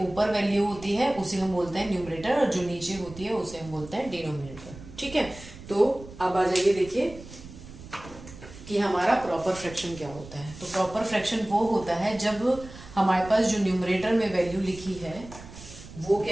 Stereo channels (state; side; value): noise; right; rumble, 16 dB below the sound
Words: ऊपर वैल्यू होती है उसे हम बोलते हैं न्यूमरेटर और जो नीचे होती है उसे हम बोलते हैं डिनोमिनेटर। ठीक है, तो अब आ जाइए देखिए कि हमारा प्रॉपर फ्रैक्शन क्या होता है। तो प्रॉपर फ्रैक्शन वो होता है जब हमारे पास जो न्यूमरेटर में वैल्यू लिखी है वो